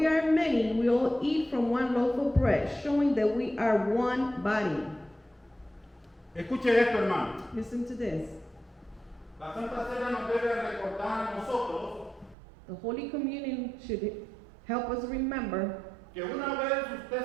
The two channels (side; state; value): left; drops out; at 12.4 s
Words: are many, we all eat from one loaf of bread, showing that we are one body. Escuche esto, hermano. Listen to this. La Santa Cena nos debe recordar a nosotros The Holy Communion should help us remember que una vez